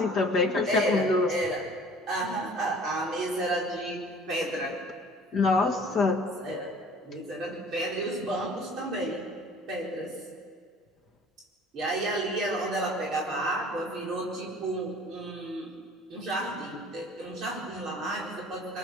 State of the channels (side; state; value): both; normal; correlation 0.49